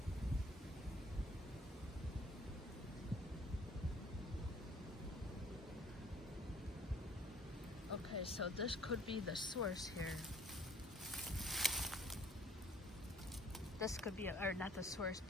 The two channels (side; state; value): both; normal; correlation 0.57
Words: Okay, so this could be the source here. This could be, or not the source,